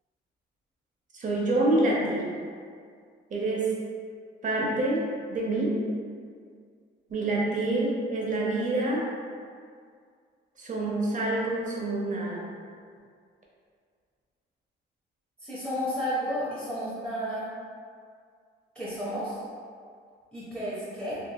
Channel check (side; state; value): both; normal; correlation 0.47